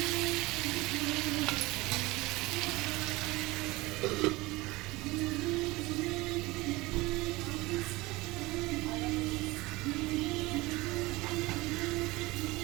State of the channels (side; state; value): left; quieter; 21.3 dB